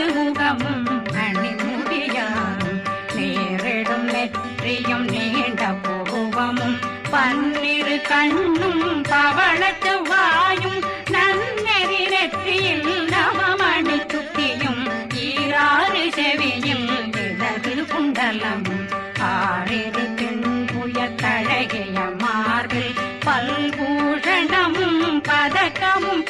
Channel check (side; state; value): both; identical; correlation 1.00